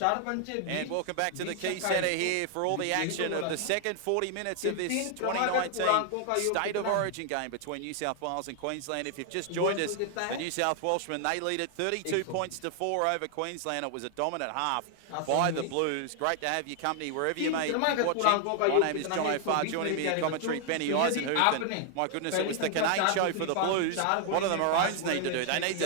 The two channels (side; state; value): both; different; correlation 0.00